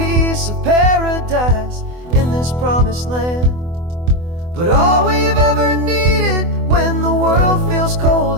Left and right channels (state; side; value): late; left; 24 ms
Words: of paradise in this promised land. But all we've ever needed when the world feels